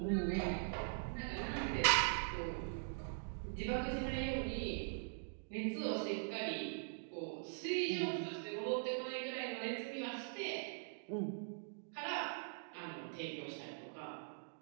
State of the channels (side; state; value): left; silent; digital silence